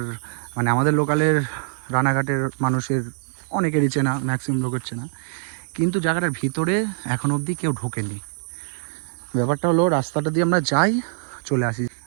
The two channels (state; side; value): silent; left; 63 dB below the other